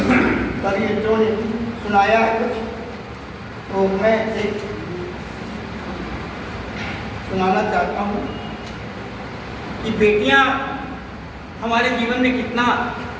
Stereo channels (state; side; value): identical; both; correlation 1.00